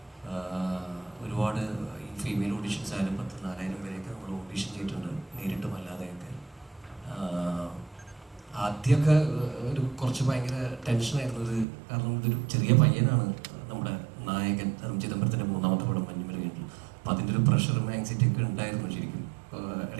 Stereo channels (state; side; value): drops out; left; at 11.7 s